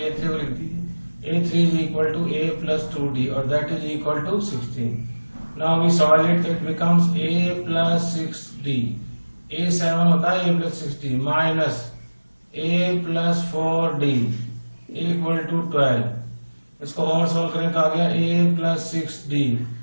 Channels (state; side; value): inverted; both; correlation -1.00